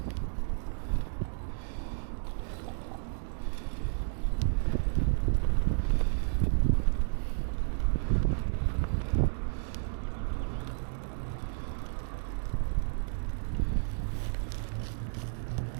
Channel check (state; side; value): silent; left; digital silence